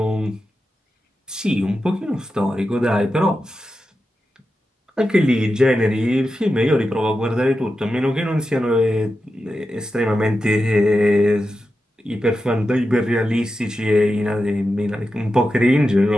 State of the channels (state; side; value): normal; both; correlation 0.90